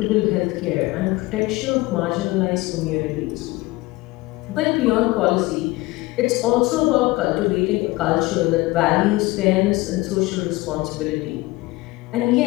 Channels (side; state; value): right; quieter; 20.7 dB